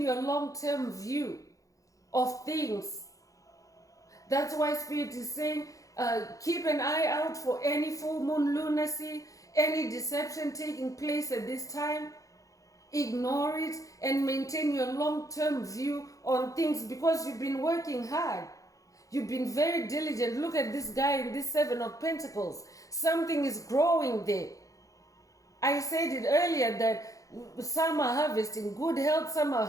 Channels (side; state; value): right; late; 0.16 ms